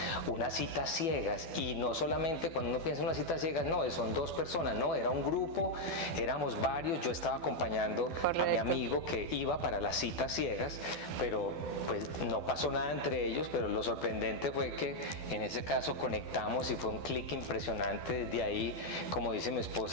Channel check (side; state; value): right; late; 12 ms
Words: unas citas ciegas, y no solamente cuando uno piensa en unas citas ciegas, no, son dos personas, no, era un grupo, éramos varios, yo estaba acompañando a mi amigo que iba para las citas ciegas, pero pues no pasó nada entre ellos, pero lo sorprendente fue que en ese caso conectamos y fue un clic impresionante. Desde ahí, como dice mi